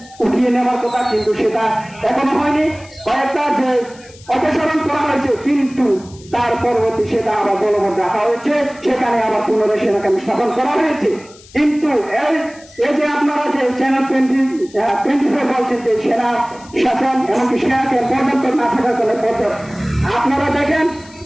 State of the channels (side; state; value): left; noise; hiss, 23 dB below the sound